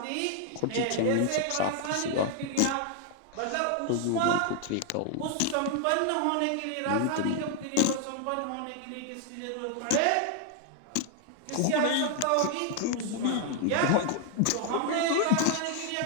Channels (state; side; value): different; both; correlation 0.00